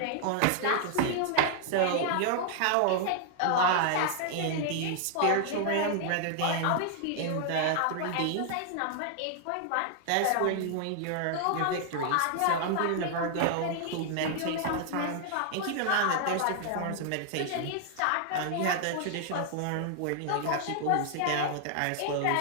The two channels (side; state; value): both; different; correlation -0.01